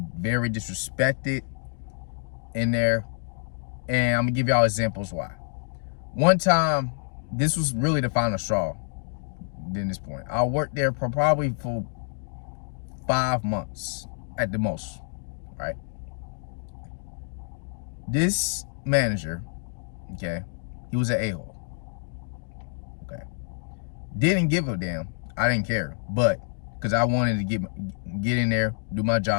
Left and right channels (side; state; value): right; silent; digital silence